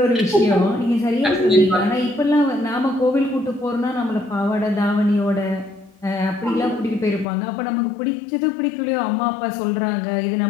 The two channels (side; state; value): right; drops out; at 7.2 s